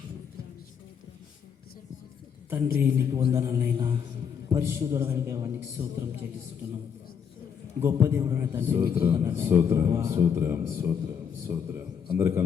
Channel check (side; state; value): right; quieter; 7.3 dB